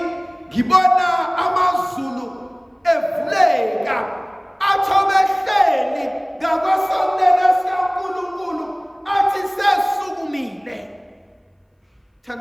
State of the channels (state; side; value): identical; both; correlation 1.00